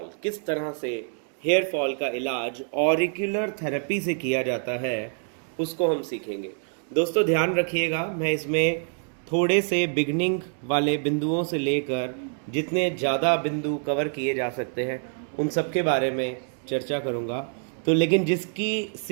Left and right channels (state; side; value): silent; left; 57 dB below the other